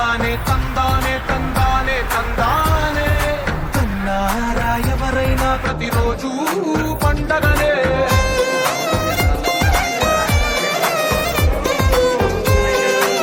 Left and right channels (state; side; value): identical; both; correlation 1.00